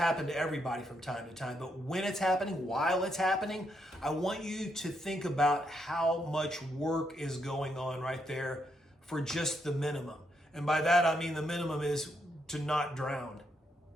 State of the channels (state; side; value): normal; both; correlation 0.78